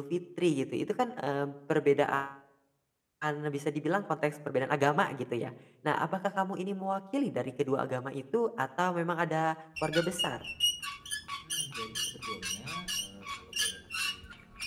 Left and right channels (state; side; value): identical; both; correlation 1.00